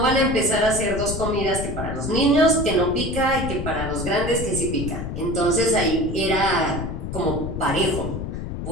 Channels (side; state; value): left; noise; rumble, 6 dB below the sound